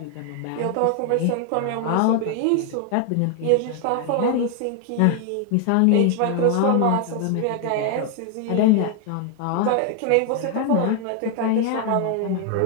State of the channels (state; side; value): different; both; correlation 0.00